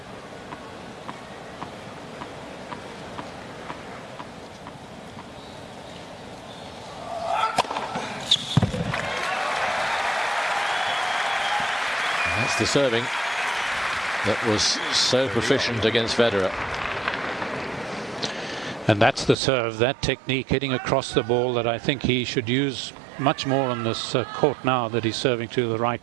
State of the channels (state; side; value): drops out; left; at 19.4 s